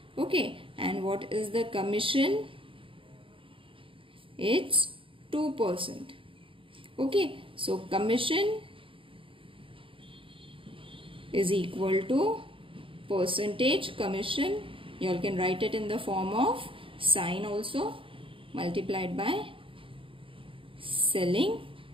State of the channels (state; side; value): late; left; 0.25 ms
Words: Okay, and what is the commission? It's 2%. Okay, so commission is equal to percentage commission. You all can write it in the form of sign also, multiplied by selling